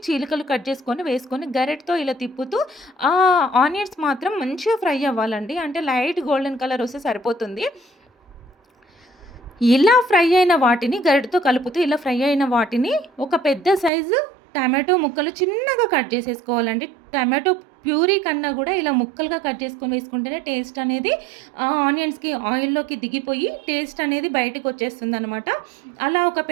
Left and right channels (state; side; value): drops out; left; at 13.9 s